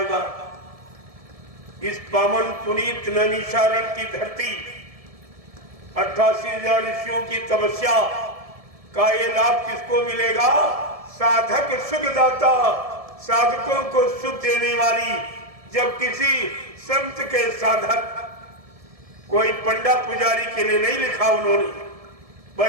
इस पावन पुनीत नैमिषारण्य की धरती, 88,000 ऋषियों की तपस्या का ये लाभ किसको मिलेगा? साधक सुखदाता, साधकों को सुख देने वाली। जब किसी संत के साधक, कोई पंडा पुजारी के लिए नहीं लिखा उन्होंने,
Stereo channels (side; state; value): left; late; 1.7 ms